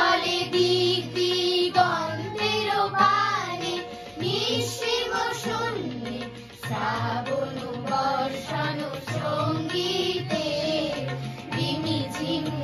দিক দিগন্তের পানে নিঃসীম শূন্যে শ্রাবণ বর্ষণ সঙ্গীতে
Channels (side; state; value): both; identical; correlation 1.00